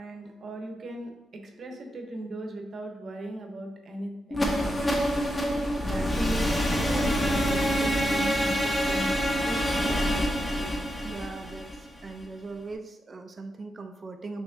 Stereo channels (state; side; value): normal; both; correlation 0.87